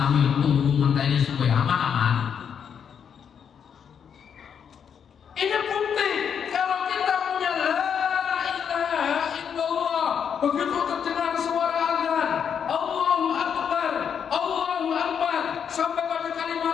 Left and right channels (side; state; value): right; quieter; 7.6 dB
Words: tunggu ngenteni suwe aman-aman. Ini bukti kalau kita punya la ilaha illallah, begitu terdengar suara azan, Allahu akbar, sampai pada